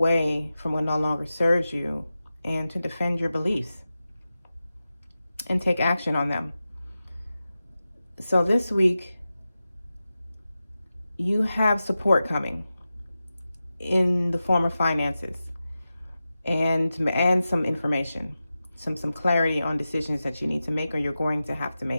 from what no longer serves you and to defend your beliefs and take action on them. So this week, you have support coming in the form of finances and some information, some clarity on decisions that you need to make or you're going to have to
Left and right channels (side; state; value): both; inverted; correlation -0.93